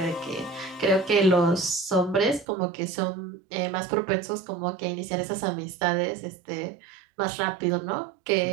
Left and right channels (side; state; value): left; drops out; at 2.5 s